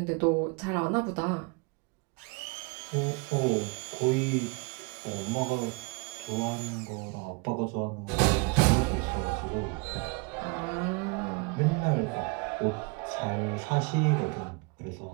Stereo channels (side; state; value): left; quieter; 29.8 dB